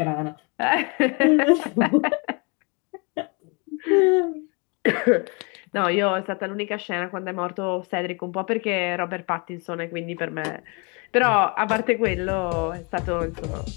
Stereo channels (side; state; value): right; quieter; 31.9 dB